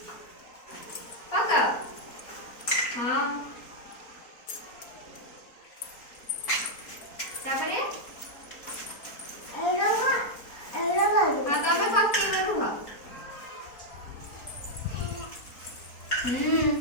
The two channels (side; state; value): right; late; 4.3 ms